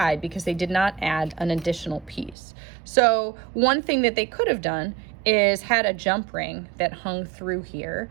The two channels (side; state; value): left; drops out; at 2.4 s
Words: because they did not add an additional piece. So one thing that they could have done is had a jump ring that hung through here,